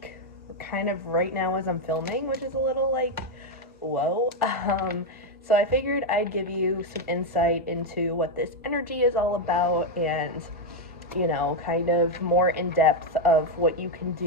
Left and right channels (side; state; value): both; normal; correlation 0.04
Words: kind of right now as I'm filming, which is a little like, whoa. So I figured I'd give you some insight into what this energy is all about and kind of more in depth of what you can